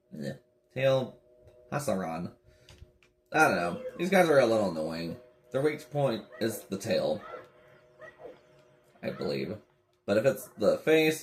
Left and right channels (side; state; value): both; identical; correlation 1.00